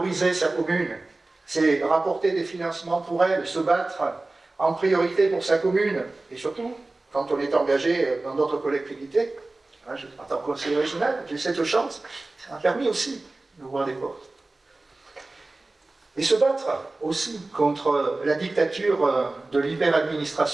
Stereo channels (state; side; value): quieter; left; 3.1 dB